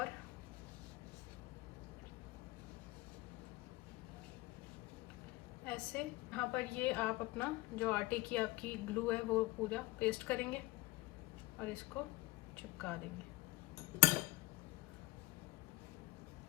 ऐसे यहाँ पर ये आप अपना जो आटे की आपकी ग्लू है वो पूरा पेस्ट करेंगे और इसको चिपका देंगे।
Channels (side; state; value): right; quieter; 20.5 dB